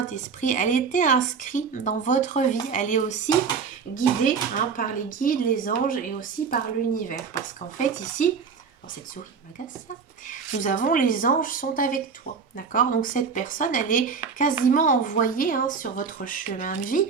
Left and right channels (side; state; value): left; quieter; 5.8 dB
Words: Elle était inscrite dans votre vie. Elle est aussi guidée hein, par les guides, les anges et aussi par l'univers. Parce qu'en fait, ici, oh, cette souris m'agace ça. Nous avons les anges sont avec toi. D'accord? Donc cette personne, elle est quasiment envoyée hein, sur votre chemin de vie